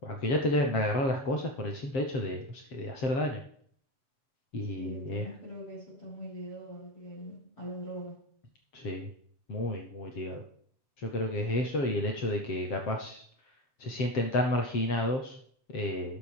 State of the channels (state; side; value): late; right; 7.5 ms